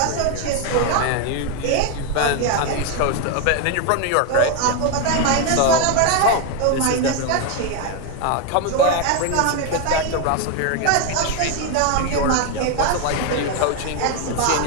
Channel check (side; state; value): both; different; correlation 0.01